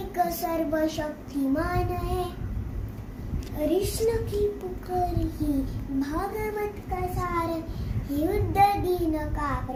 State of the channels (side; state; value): both; identical; correlation 1.00